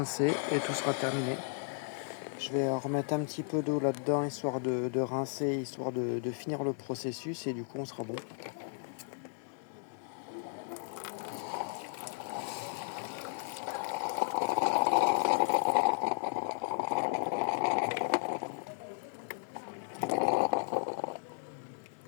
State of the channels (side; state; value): right; silent; digital silence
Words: et tout sera terminé. Je vais remettre un petit peu d'eau là-dedans, histoire de rincer, histoire de finir le processus et du coup on sera bon.